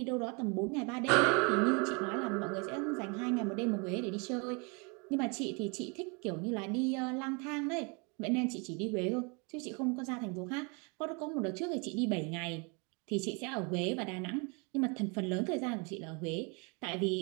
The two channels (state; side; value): quieter; left; 32.3 dB